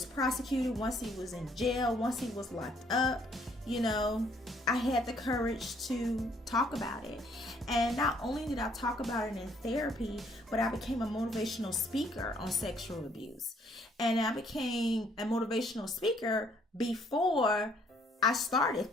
prosecuted, once he was in jail, once he was locked up, I had the courage to talk about it. And not only did I talk about it in therapy, but I became a motivational speaker on sexual abuse. And I became a motivational speaker before I started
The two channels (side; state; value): both; normal; correlation 0.65